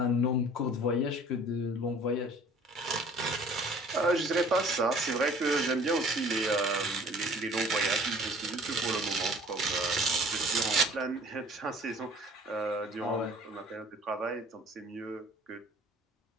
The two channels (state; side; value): normal; both; correlation 0.51